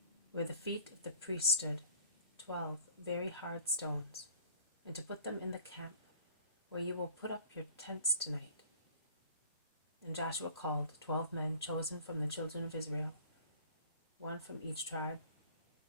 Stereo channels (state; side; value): inverted; both; correlation -0.48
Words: where the feet of the priests stood, 12 very hard stones, and to put them in the camp where you will put up your tents tonight.' And Joshua called 12 men chosen from the children of Israel, 1 from each tribe,